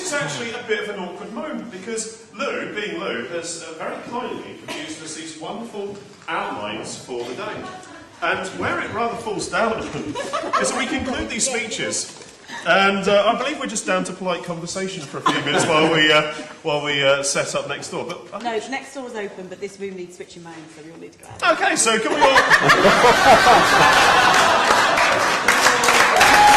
is actually a bit of an awkward moment because Lou, being Lou, has very kindly produced us these wonderful outlines for the day. And where it rather falls down is that we conclude these speeches, and I believe we're just down to polite conversation for a few minutes while we set up next door. But no, next door's open, but this room needs switching mains, so we all need to go out. Okay, so can we all?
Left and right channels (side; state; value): both; identical; correlation 1.00